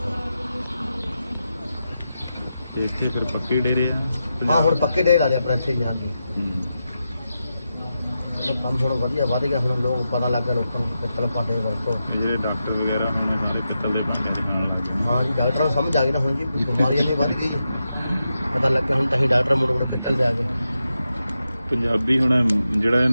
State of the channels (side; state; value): both; inverted; correlation -0.88